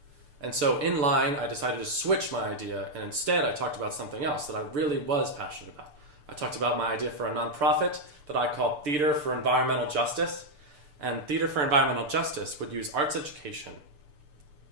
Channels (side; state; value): left; late; 6.8 ms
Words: And so in line, I decided to switch my idea, and instead I talked about something else that I really was passionate about. I talked about my idea for a nonprofit that I called Theater for Environmental Justice. And Theater for Environmental Justice would use arts education